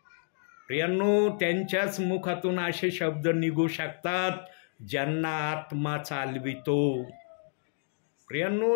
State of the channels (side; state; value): right; silent; digital silence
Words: प्रियांनो, त्यांच्याच मुखातून असे शब्द निघू शकतात ज्यांना आत्मा चालवितो. प्रियांनो,